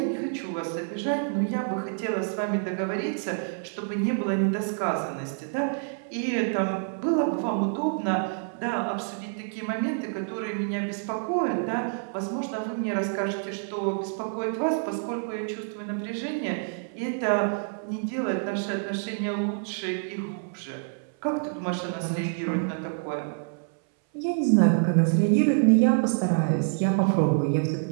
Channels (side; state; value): left; silent; 60 dB below the other